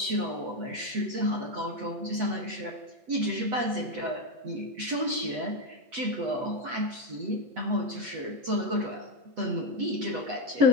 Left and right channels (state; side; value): late; left; 8.1 ms